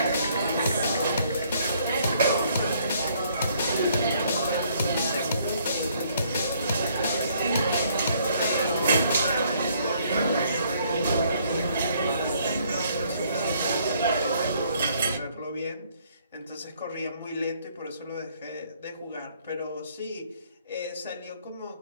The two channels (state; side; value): inverted; both; correlation -0.65